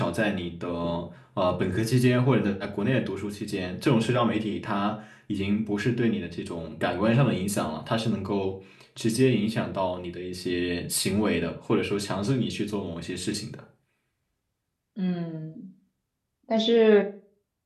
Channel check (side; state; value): both; identical; correlation 1.00